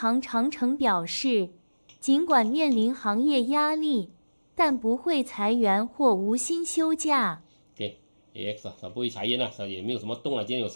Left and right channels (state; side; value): inverted; both; correlation -1.00